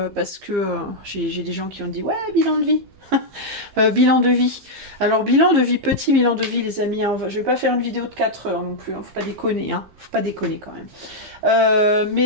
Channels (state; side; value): late; left; 15 ms